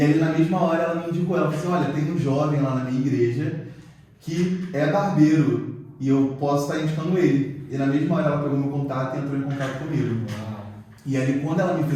aí, na mesma hora, ela me indicou, ela falou assim: olha, tem um jovem lá na minha igreja que é barbeiro e eu posso estar indicando ele. E na mesma hora, ela pegou meu contato e entrou em contato comigo. E aí, quando ela me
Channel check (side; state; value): both; identical; correlation 1.00